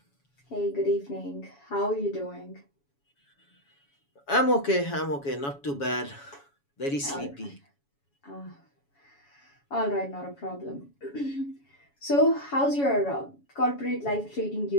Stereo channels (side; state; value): right; late; 7.1 ms